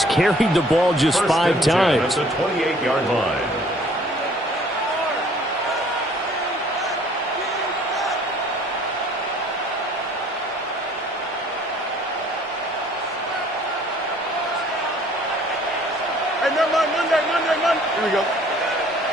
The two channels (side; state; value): both; normal; correlation 0.56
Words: carried the ball just 5 times. At the 28-yard line. Hey, never mind. Monday. Here we go.